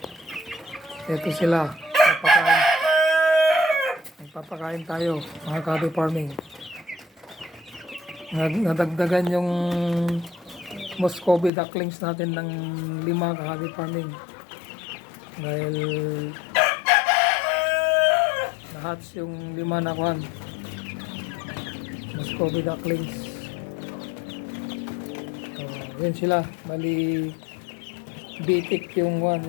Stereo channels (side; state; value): right; drops out; at 11.5 s